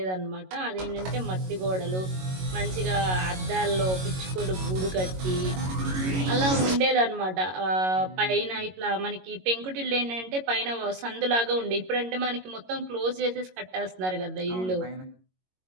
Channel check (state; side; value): late; left; 22 ms